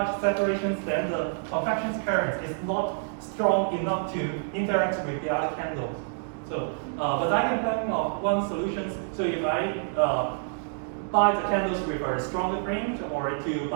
separation, then the contraction current is not strong enough to interact with the other candles. So, but I can think of one solution. So if I bind the candles with a stronger frame, or to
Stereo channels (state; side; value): silent; left; digital silence